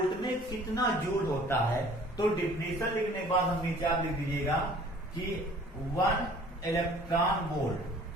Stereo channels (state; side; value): normal; both; correlation 0.51